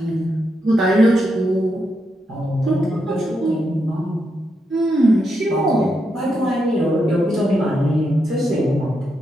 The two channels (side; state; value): both; normal; correlation 0.83